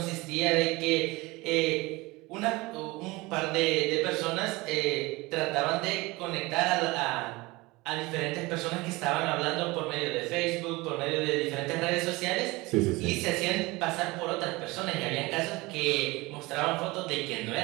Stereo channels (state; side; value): quieter; left; 22.4 dB